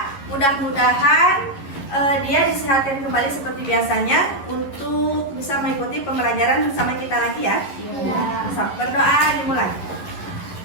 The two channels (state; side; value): late; right; 11 ms